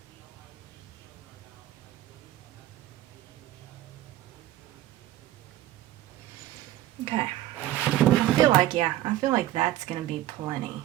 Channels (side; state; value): left; quieter; 14.4 dB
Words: Okay, I feel like that's gonna be plenty